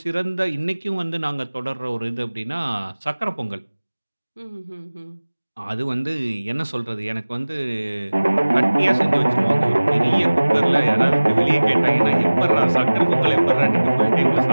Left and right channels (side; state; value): both; inverted; correlation -1.00